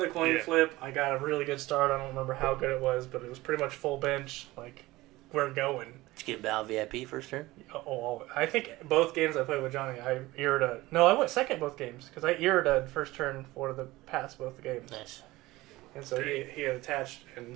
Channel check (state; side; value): quieter; left; 19.0 dB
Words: coin Yeah. flip. I got a really good start. I don't remember how good it was, but it was pretty much full bench. We're going. Did you get Val VIP first turn? Oh, I think both games I played with Johnny, I Irida. No, I went second both games because I Irida first turn for the pass both the games. Nice. And so he had attached, and